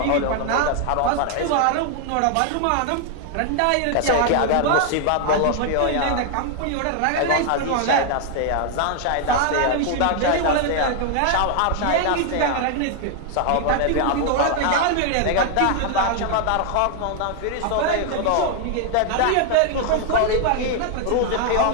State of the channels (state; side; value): different; both; correlation 0.00